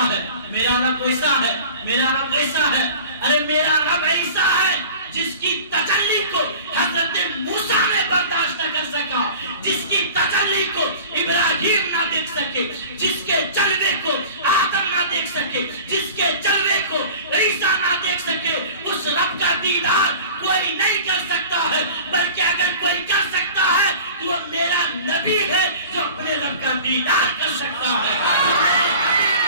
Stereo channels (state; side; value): inverted; both; correlation -0.41